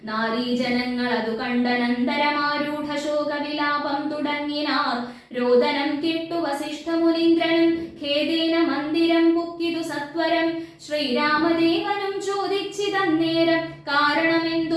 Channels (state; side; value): identical; both; correlation 1.00